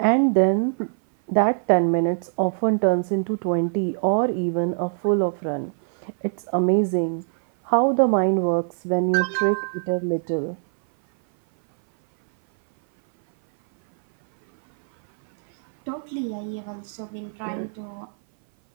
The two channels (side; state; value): left; silent; 58 dB below the other